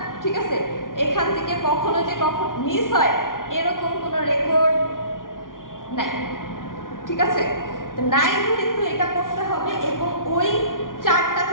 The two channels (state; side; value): late; right; 0.89 ms